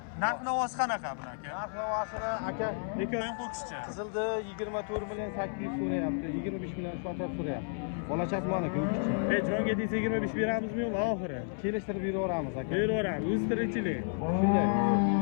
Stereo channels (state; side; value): silent; right; 57 dB below the other